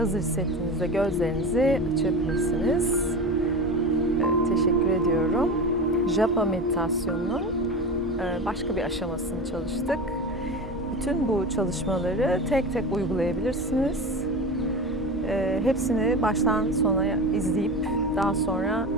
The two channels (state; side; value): normal; both; correlation 0.27